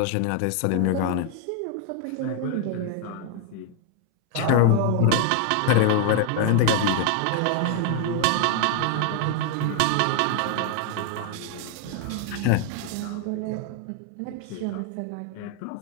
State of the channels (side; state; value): both; different; correlation 0.00